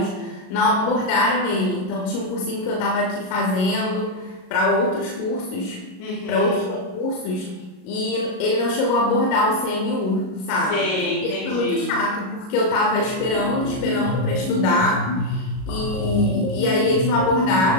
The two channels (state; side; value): late; right; 38 ms